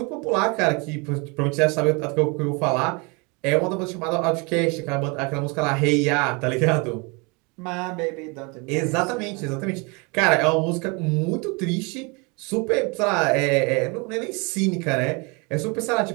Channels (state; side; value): quieter; left; 29.6 dB